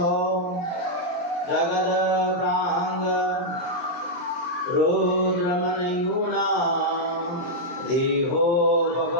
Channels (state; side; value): late; right; 23 ms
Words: जगद प्रांग रुद्रमनयूना देहो